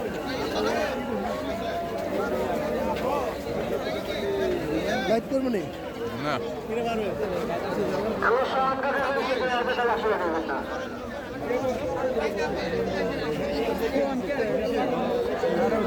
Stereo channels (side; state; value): both; identical; correlation 1.00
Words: লাইট করবো না না আমার সমানকে আসলে দেবেন না।